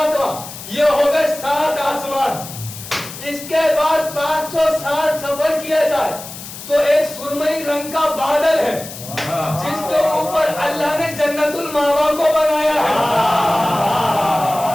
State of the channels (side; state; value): left; noise; hiss, 12 dB below the sound